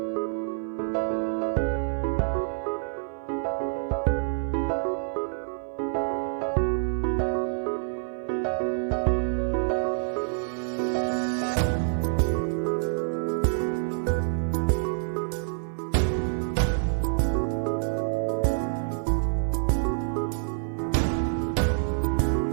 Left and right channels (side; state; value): left; silent; 56 dB below the other